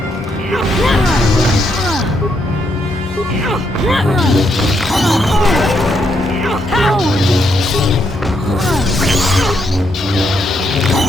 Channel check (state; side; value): normal; both; correlation 0.77